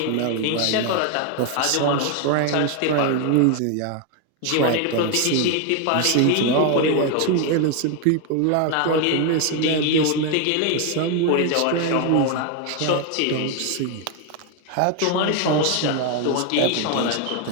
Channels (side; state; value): both; different; correlation 0.01